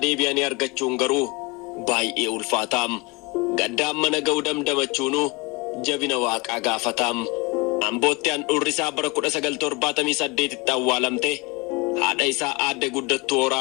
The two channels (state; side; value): quieter; right; 26.3 dB